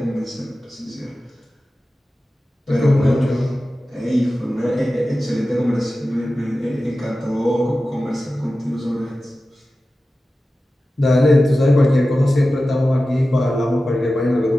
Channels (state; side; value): normal; both; correlation 0.94